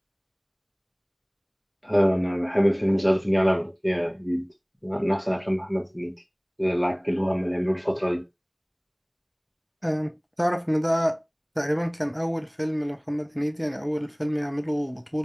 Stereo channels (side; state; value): both; identical; correlation 1.00